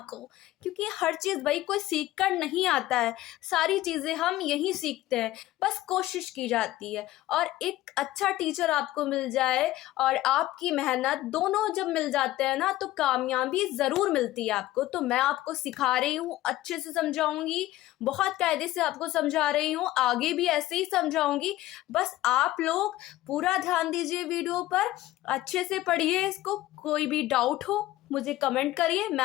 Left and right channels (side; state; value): right; quieter; 16.0 dB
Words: क्योंकि हर चीज़ भाई कोई सीख कर नहीं आता है। सारी चीज़ें हम यहीं सीखते हैं, बस कोशिश की जाती है। और एक अच्छा टीचर आपको मिल जाए और आपकी मेहनत, दोनों जब मिल जाते हैं ना, तो कामयाबी ज़रूर मिलती है आपको। तो मैं आपको सिखा रही हूँ, अच्छे से समझाऊंगी, बहुत कायदे से आपको समझा रही हूँ, आगे भी ऐसे ही समझाऊंगी। बस आप लोग पूरा ध्यान दीजिए वीडियो पर, अच्छे से पढ़िए इसको। कोई भी डाउट हो मुझे कमेंट करिए,